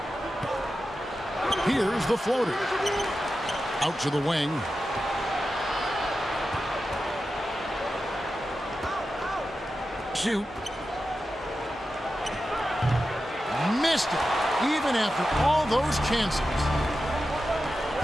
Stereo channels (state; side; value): normal; both; correlation 0.91